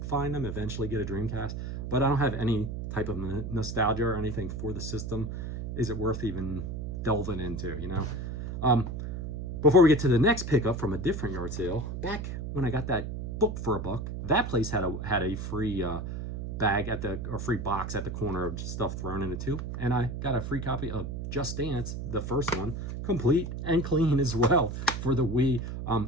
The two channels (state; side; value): noise; right; hum, 5 dB below the sound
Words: them? Eventually get a Dreamcast, but I don't have any type of nostalgia or anything for the system. Is it worth even delving into? You know. Before we get to the next pickup from a different yard sale, back when I got that book for $1, that place had a free bag free box at the corner of stuff thrown in it too, and I got a free copy of Just Dance, the first one, complete and clean as well, for the Wii.